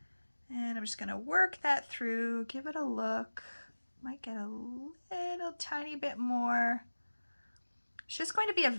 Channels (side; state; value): both; inverted; correlation -1.00